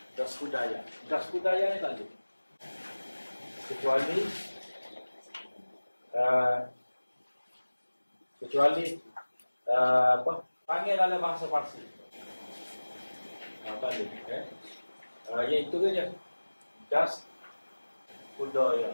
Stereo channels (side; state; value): both; inverted; correlation -1.00